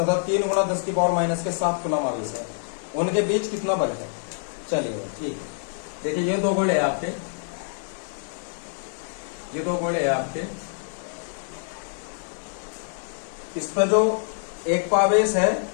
3 गुणा 10 की पावर माइनस के 7 कूलाम आवेश है, उनके बीच कितना बल है। चलिए ठीक है, देखिए ये दो गोले हैं आपके, ये दो गोले हैं आपके। इस पर जो एक आवेश है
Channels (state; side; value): silent; right; digital silence